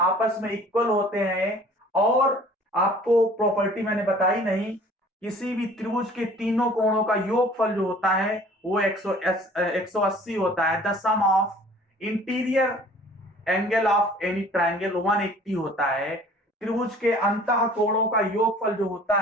में इक्वल होते हैं। और आपको प्रॉपर्टी मैंने बताई नहीं, किसी भी त्रिभुज के तीनों कोणों का योगफल जो होता है वो 180 होता है। The sum of interior angle of any triangle 180 होता है। त्रिभुज के अंतः कोणों का योगफल जो होता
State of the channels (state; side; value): normal; both; correlation 0.50